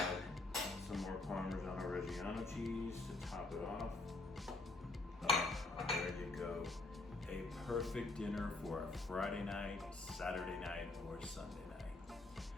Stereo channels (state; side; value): quieter; right; 3.1 dB